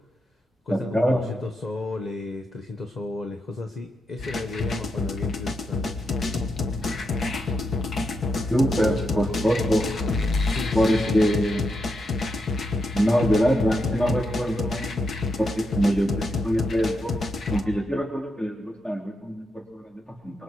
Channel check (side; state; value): both; normal; correlation 0.84